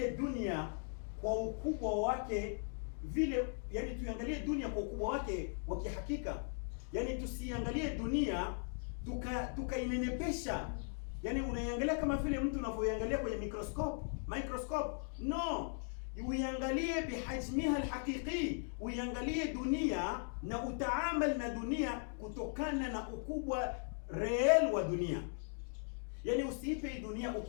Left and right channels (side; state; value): right; silent; 52 dB below the other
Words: dunia kwa ukubwa wake vile, yani tuiangalie dunia kwa ukubwa wake wa kihakika. Yani tusiangalie dunia tukainenepesha, yani unaiangalia kama vile mtu unavyoiangalia kwenye microscope. No, uiangalie bihajmiha alhaqiqi, uiangalie dunia na utaamal na dunia kutokana na ukubwa real wa dunia. Yani usiipe dunia